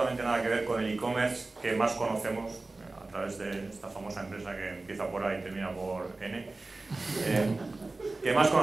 nada que ver con el e-commerce que más conocemos a través de esta famosa empresa que empieza por A y termina por N, que más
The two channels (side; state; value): left; quieter; 3.3 dB